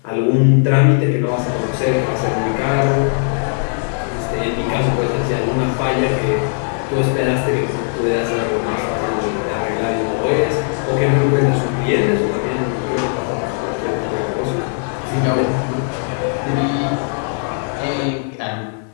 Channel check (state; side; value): silent; right; 62 dB below the other